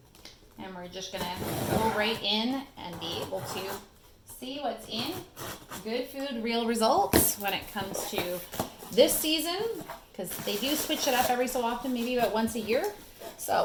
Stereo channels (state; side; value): identical; both; correlation 1.00